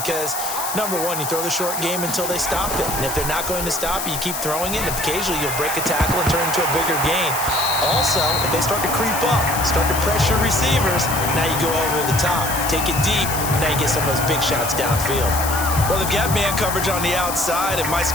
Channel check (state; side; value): noise; left; hiss, 5 dB below the sound